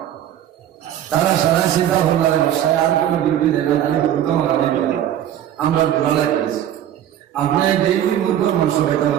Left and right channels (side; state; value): left; quieter; 11.1 dB